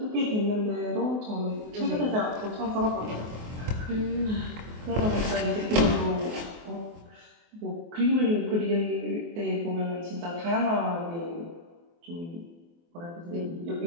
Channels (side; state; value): left; late; 24 ms